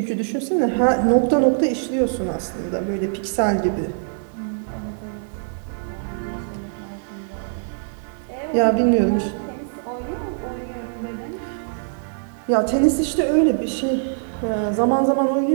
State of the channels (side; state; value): left; silent; digital silence